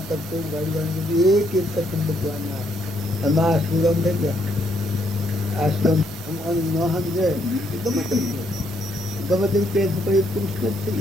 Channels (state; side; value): normal; both; correlation 0.73